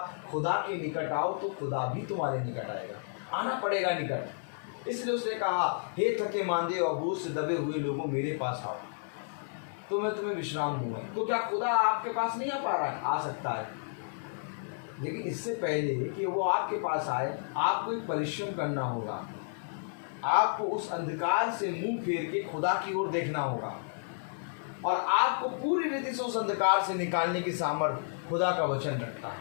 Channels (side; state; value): right; silent; digital silence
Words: खुदा के निकट आओ तो खुदा भी तुम्हारे निकट आएगा, आना पड़ेगा निकट। इसलिए उसने कहा हे थके मांदे और बोझ से दबे हुए लोगों मेरे पास आओ तो मैं तुम्हें विश्राम दूंगा। तो क्या खुदा आपके पास नहीं आ पा रहा है? आ सकता है, लेकिन इससे पहले कि वो आपके पास आए आपको एक परिश्रम करना होगा। आपको उस अंधकार से मुंह फेर के खुदा की ओर देखना होगा और आपको पूरी रीति से उस अंधकार से निकालने की सामर्थ्य खुदा का वचन रखता